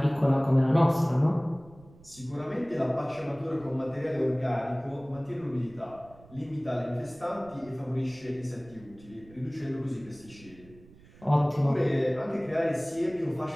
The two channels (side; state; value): right; noise; rumble, 23 dB below the sound